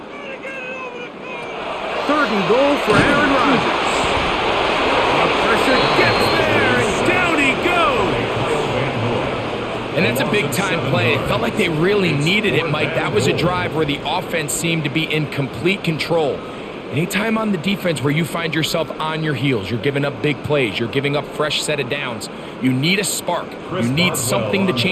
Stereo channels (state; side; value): identical; both; correlation 1.00